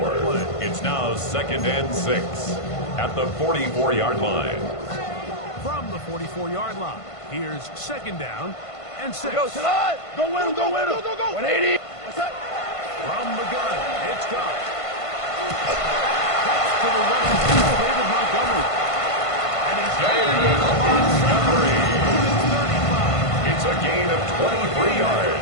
the 4. play. It's now 2nd and 6 at the 44-yard line. From the 44-yard line, here's 2nd down and 6. Go, Salah! Go win him, go win him! Go, go, go! 180! What's that? From the gun, it's Goff. Cuts to the right, David Montgomery. And he's David Montgomery. It's a gain of 23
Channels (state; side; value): late; right; 1.5 ms